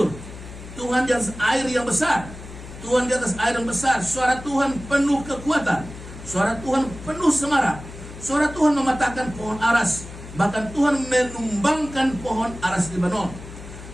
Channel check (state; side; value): noise; left; hum, 14 dB below the sound